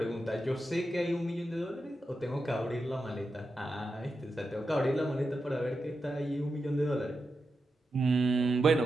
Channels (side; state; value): both; normal; correlation 0.88